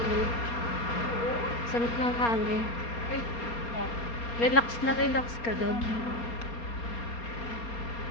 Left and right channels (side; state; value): right; late; 4.3 ms